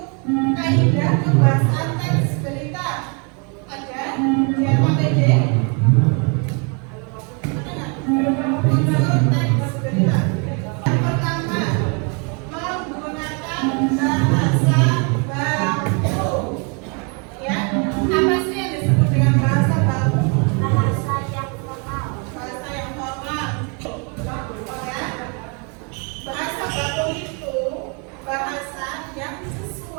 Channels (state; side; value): quieter; left; 35.3 dB